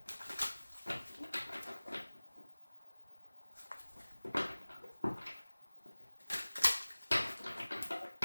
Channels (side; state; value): both; inverted; correlation -1.00